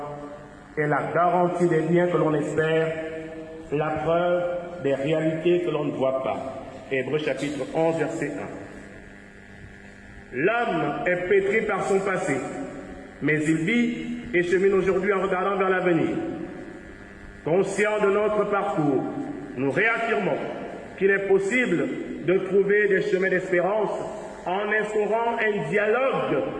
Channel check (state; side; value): identical; both; correlation 1.00